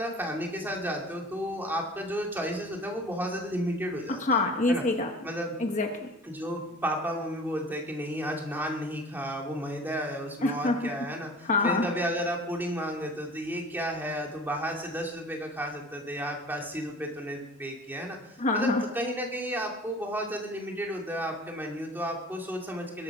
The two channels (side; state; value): both; normal; correlation 0.44